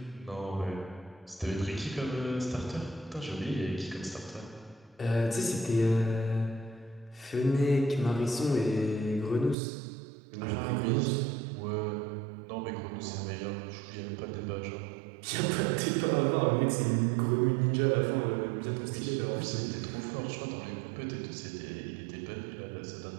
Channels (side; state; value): left; drops out; at 9.6 s